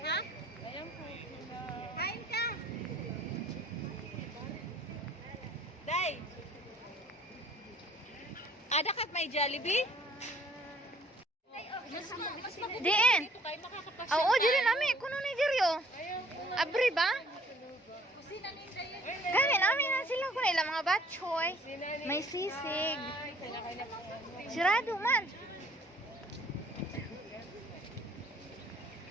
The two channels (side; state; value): both; normal; correlation 0.58